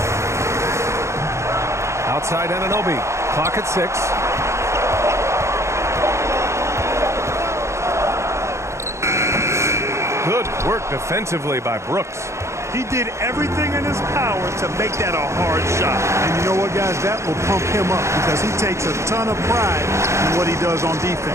Outside Anunoby. Clock at 6. work defensively by Brooks. He did everything in his power to make that a hard shot. And you know what, guys? That will pump him up because he takes a ton of pride in what he does on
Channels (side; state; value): left; late; 0.14 ms